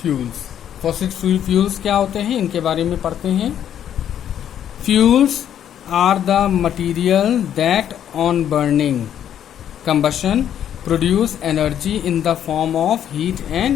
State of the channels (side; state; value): right; quieter; 9.9 dB